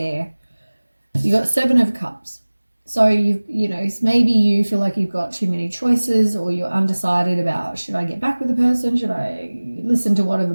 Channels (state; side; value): inverted; both; correlation -1.00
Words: You got 7 of cups. So you know, maybe you feel like you've got too many choices or you're undecided about, should I get back with the person? Should I listen to whatever